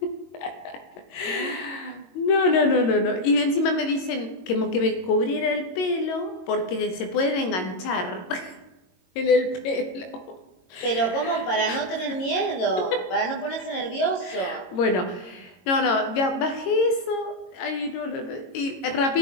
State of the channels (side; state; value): right; late; 22 ms